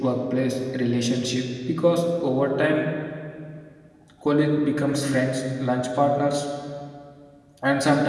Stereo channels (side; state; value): both; identical; correlation 1.00